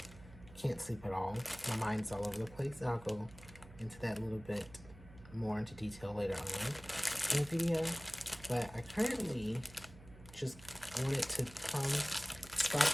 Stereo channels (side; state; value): right; noise; hum, 19 dB below the sound